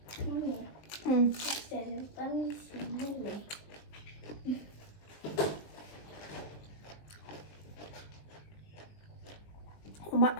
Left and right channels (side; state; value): right; late; 20 ms